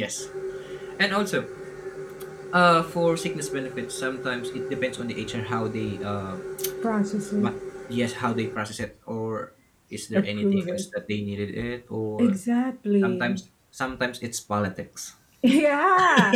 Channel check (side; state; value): both; identical; correlation 1.00